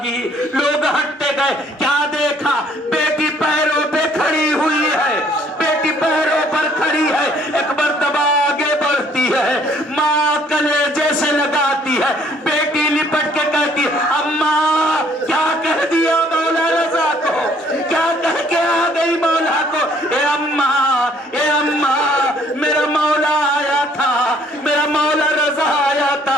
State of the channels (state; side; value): normal; both; correlation 0.62